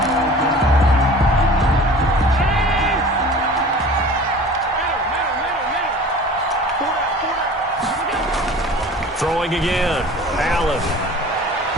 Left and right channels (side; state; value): both; normal; correlation 0.42